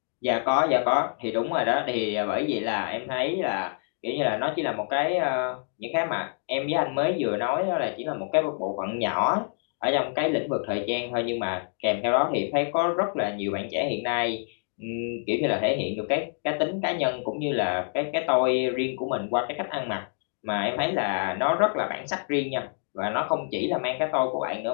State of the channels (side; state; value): right; silent; digital silence